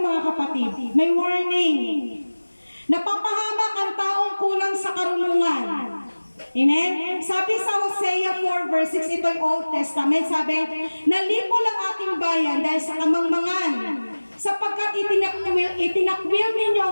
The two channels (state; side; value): inverted; both; correlation -1.00